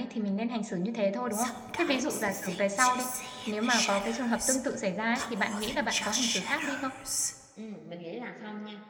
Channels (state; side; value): identical; both; correlation 1.00